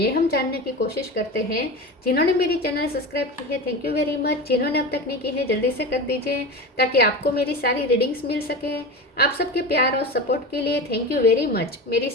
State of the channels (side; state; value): both; normal; correlation 0.27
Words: हम जानने की कोशिश करते हैं। जिन्होंने मेरी चैनल सब्सक्राइब की है, थैंक यू वेरी मच। जिन्होंने अब तक नहीं की है, जल्दी से कर दीजिए ताकि आपको मेरी सारी रीडिंग्स मिल सके। आप सबके प्यार और सपोर्ट के लिए थैंक यू वेरी मच। मेरी